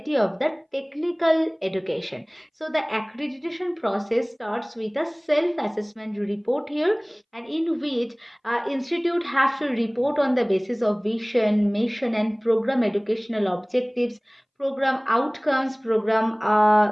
of the technical education. So the accreditation process starts with a self-assessment report here, and in which institute have to report on the basis of vision, mission, and program educational objectives, program outcomes, program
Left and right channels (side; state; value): both; identical; correlation 1.00